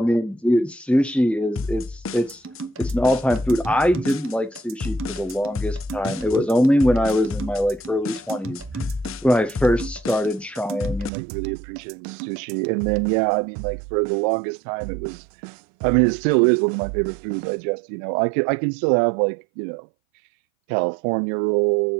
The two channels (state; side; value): drops out; left; at 11.1 s